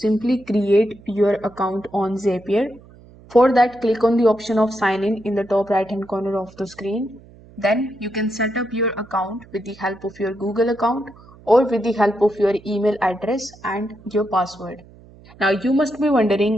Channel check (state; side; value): noise; right; hum, 23 dB below the sound